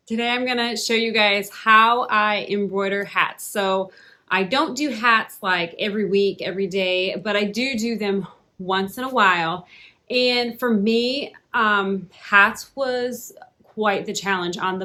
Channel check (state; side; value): identical; both; correlation 1.00